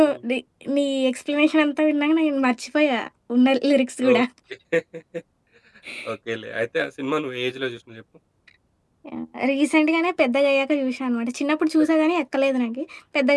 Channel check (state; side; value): identical; both; correlation 1.00